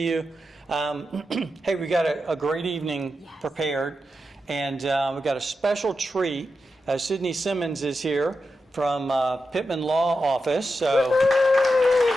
you. Hey, we got a great evening prepared, and we got a special treat. Sydney Simmons is here from Pittman Law Office, so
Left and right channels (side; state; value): both; normal; correlation 0.89